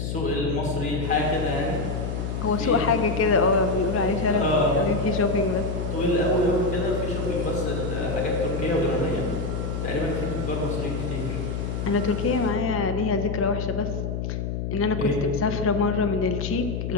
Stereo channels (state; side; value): noise; left; hum, 3 dB below the sound